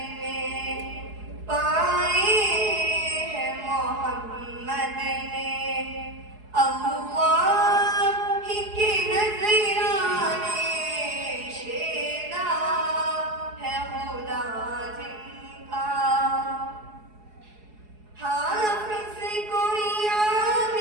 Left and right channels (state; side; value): late; left; 4.7 ms